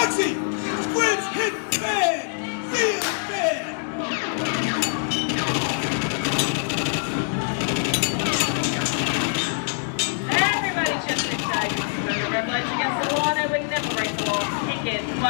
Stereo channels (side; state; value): right; silent; digital silence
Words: Squid's hit bad! Real bad! Everybody just inside. Remember, red lights against the law, and we never break the law. Kick it.